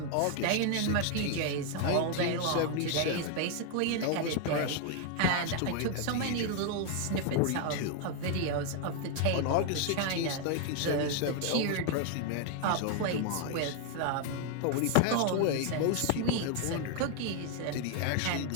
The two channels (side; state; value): both; different; correlation 0.00